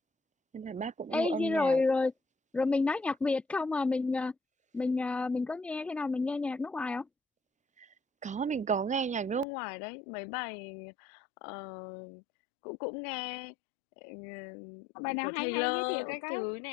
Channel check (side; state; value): right; drops out; at 9.5 s